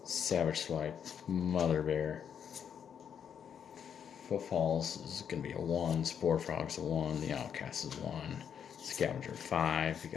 Savage Swipe, Mother Bear. Footfalls is going to be a 1, Spore Frog's a 1, the Outcast is 1, Scavenger 5. We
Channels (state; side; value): quieter; right; 8.1 dB